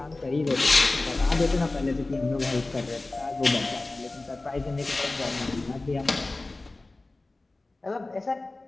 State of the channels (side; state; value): right; quieter; 3.1 dB